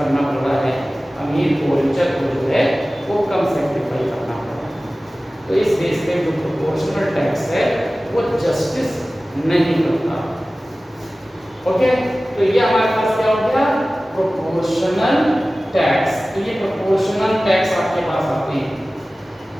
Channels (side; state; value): both; normal; correlation 0.97